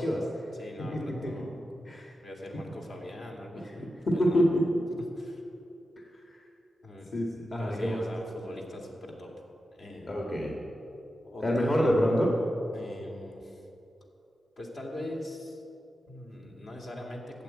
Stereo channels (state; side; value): normal; both; correlation 0.91